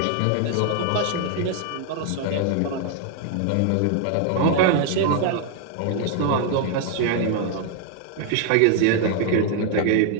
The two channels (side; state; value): both; different; correlation 0.00